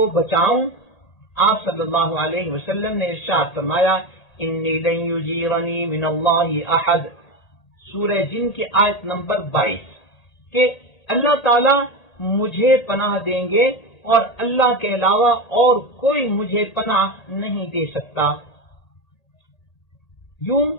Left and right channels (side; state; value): right; late; 1.8 ms